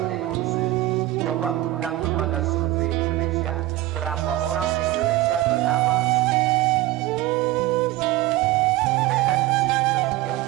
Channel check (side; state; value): left; quieter; 16.2 dB